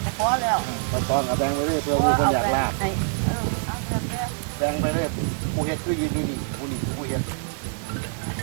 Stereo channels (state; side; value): silent; left; 55 dB below the other